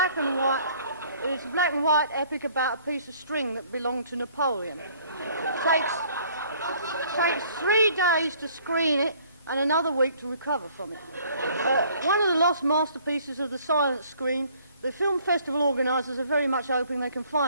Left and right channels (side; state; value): both; inverted; correlation -0.58